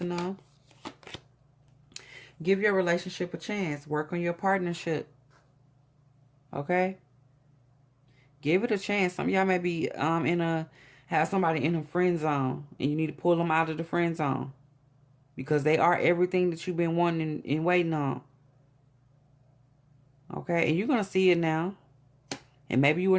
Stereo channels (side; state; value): both; identical; correlation 1.00